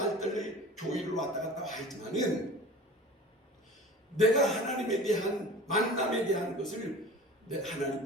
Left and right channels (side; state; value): both; normal; correlation 0.40